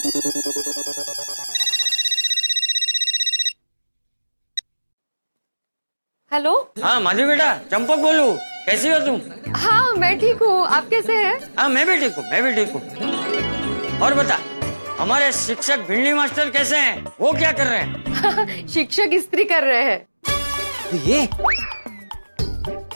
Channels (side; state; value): both; inverted; correlation -1.00